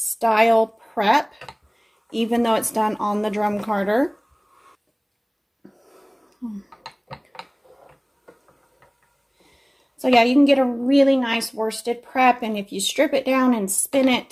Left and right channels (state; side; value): identical; both; correlation 1.00